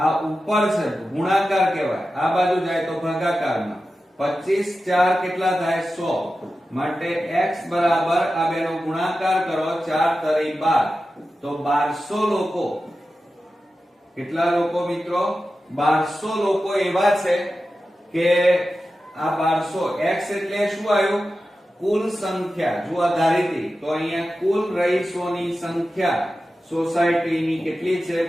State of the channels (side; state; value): both; normal; correlation 0.93